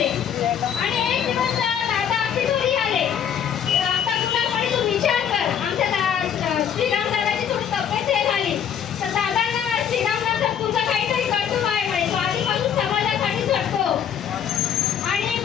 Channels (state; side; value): quieter; right; 8.7 dB